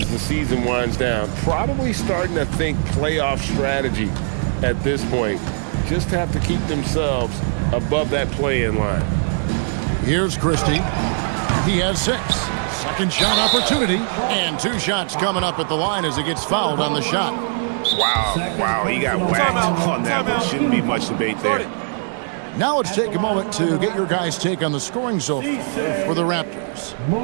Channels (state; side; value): silent; left; 57 dB below the other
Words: the season winds down. Probably starting to think playoff strategy at this point. Just have to keep themselves above that play-in line. Here's Christie. He has 6. Second shot opportunity. And 2 shots coming up at the line as he gets fouled on the shot. Wow, he got whacked on that one. Shouldn't be much debate there. Now let's take a moment to get your guys' take on the scoring so far for the Raptors.